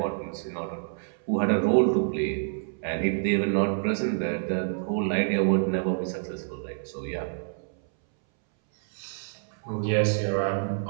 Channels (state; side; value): silent; left; 60 dB below the other